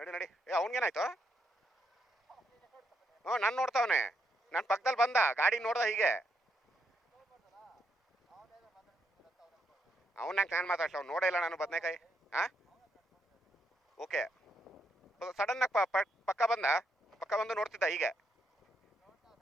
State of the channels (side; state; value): both; normal; correlation 0.78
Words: ನಡಿ. ಅವನಿಗೇನಾಯ್ತು? ಹ್ಞೂ, ನಾನು ನೋಡ್ತಾವನೆ. ನನ್ನ ಪಕ್ಕದಲ್ಲಿ ಬಂದ, ಗಾಡಿ ನೋಡ್ದ ಹೀಗೆ. ಅವನಾಗ ನಾನು ಮಾತಾಡ್ಸ, ಅವ್ನು ನೋಡೇ ಇಲ್ಲ ನಾನು ಬದನೇಕಾಯಿ. ಹಾಂ, ಓಕೆ. ಸಡನ್ನಾಗಿ ಪಕ್ಕ ಬಂದು ನೋಡ್ತಿದ್ದ ಹೀಗೆ.